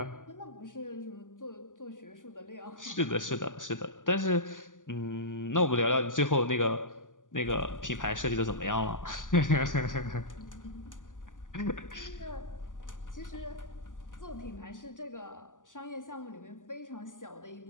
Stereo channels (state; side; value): late; right; 0.88 ms